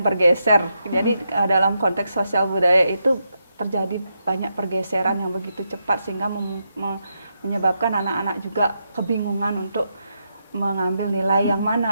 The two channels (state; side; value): inverted; both; correlation -0.82